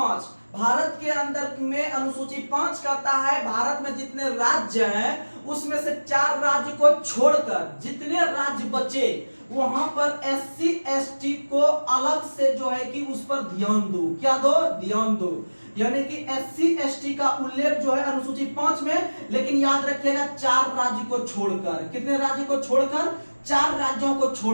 भारत के अंदर में अनुसूची 5 कहता है भारत में जितने राज्य हैं उसमें से 4 राज्य को छोड़कर जितने राज्य बचे वहां पर एससी एसटी को अलग से जो है कि उस पर ध्यान दो। क्या दो? ध्यान दो। यानी कि एससी एसटी का उल्लेख जो है अनुसूची 5 में, लेकिन याद रखिएगा 4 राज्य को छोड़कर। कितने राज्य को छोड़कर? 4 राज्यों को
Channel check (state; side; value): inverted; both; correlation -1.00